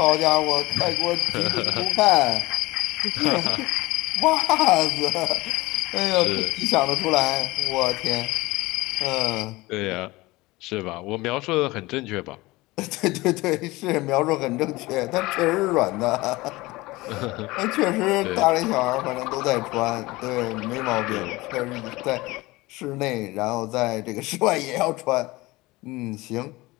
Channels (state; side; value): quieter; right; 20.9 dB